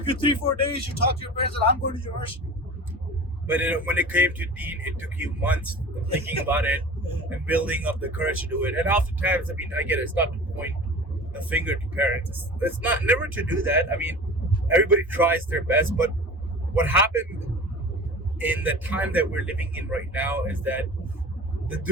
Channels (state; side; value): normal; both; correlation 0.37